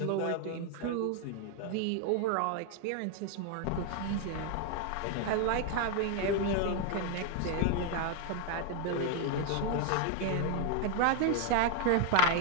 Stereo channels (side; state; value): both; different; correlation 0.01